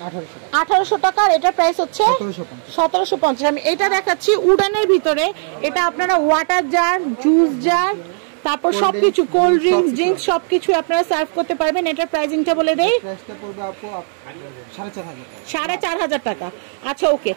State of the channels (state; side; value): silent; left; 67 dB below the other